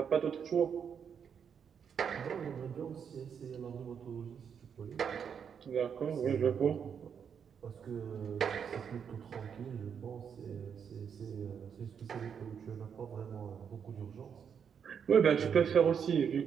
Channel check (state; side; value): quieter; left; 7.3 dB